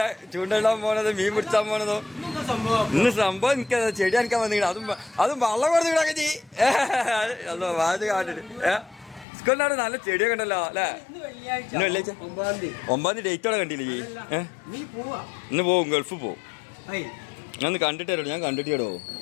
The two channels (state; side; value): drops out; right; at 9.2 s